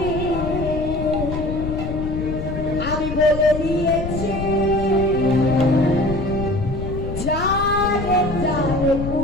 আমি বলে দিয়েছি। জানে জানে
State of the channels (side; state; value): left; noise; rumble, 6 dB below the sound